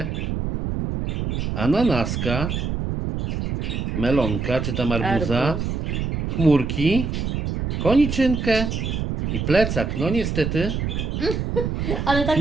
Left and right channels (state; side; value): noise; right; rumble, 2 dB below the sound